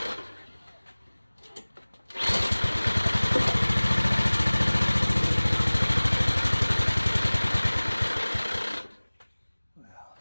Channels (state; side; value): inverted; both; correlation -1.00